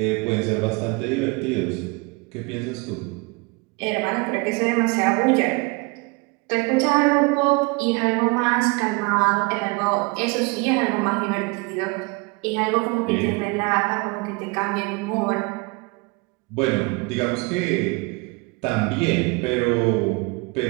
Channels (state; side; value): quieter; left; 27.6 dB